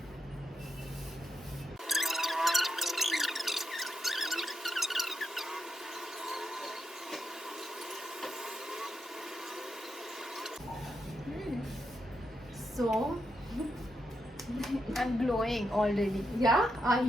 So I'm glowing already. yeah, are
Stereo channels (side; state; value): both; normal; correlation 0.84